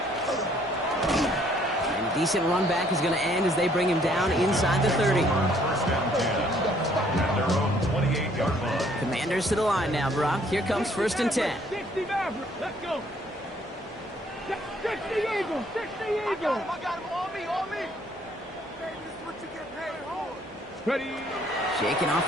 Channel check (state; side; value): normal; both; correlation 0.63